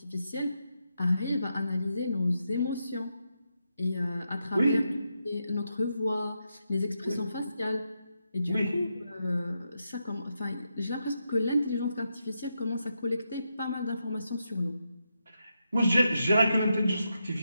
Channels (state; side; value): inverted; both; correlation -0.85